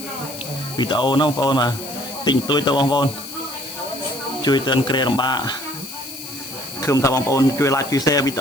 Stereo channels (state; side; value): noise; left; hiss, 12 dB below the sound